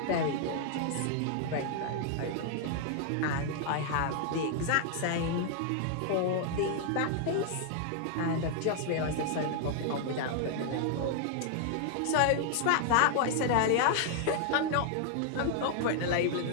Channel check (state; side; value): different; both; correlation 0.00